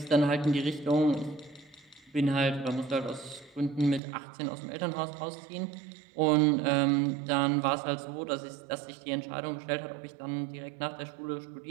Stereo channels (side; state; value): left; drops out; at 4.0 s